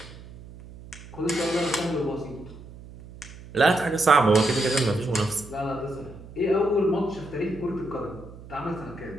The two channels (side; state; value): right; noise; hum, 17 dB below the sound